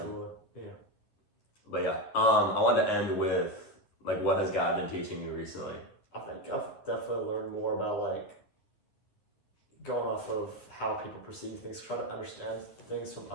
Yeah. But yeah, I wanted to end with like what has God been teaching you recently? I think I've definitely learned more about like going off of how people perceive things, try to understand things from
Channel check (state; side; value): late; right; 11 ms